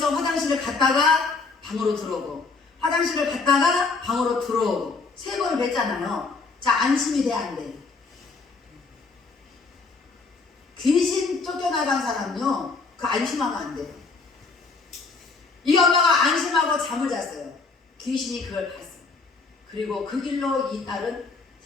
화장실을 갔다가 방으로 들어오고 화장실을 갔다가 방으로 들어오고 3번을 뵀잖아요. 자 안심이 돼 안 돼? 귀신 쫓겨나간 사람요 그 안심하면 안 돼. 이 엄마가 안심하고 잠을 잤어요. 귀신이 그걸 봤어요. 그리고 그 길로 이 딸은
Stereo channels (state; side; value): quieter; right; 4.2 dB